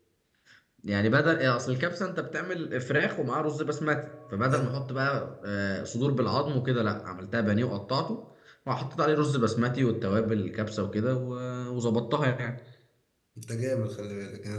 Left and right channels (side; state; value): both; identical; correlation 1.00